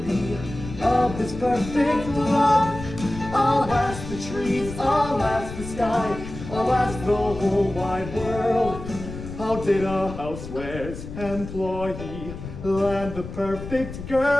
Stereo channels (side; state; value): left; noise; rumble, 10 dB below the sound